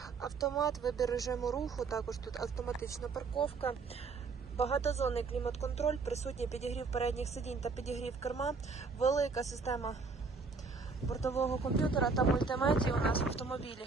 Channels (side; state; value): left; quieter; 4.6 dB